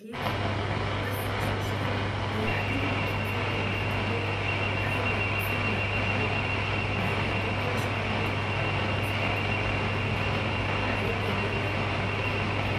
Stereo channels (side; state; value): both; identical; correlation 1.00